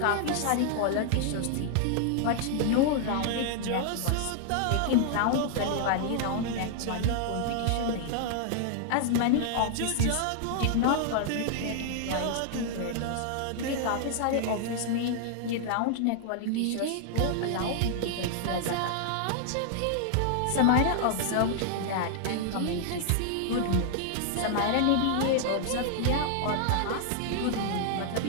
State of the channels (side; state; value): both; different; correlation -0.01